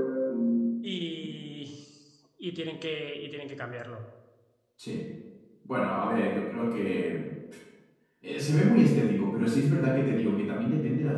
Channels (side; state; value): both; identical; correlation 1.00